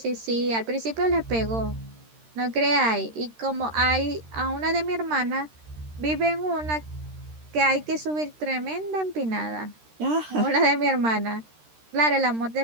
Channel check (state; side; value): late; left; 13 ms